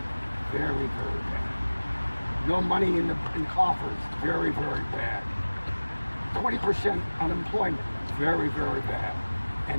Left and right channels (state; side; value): inverted; both; correlation -1.00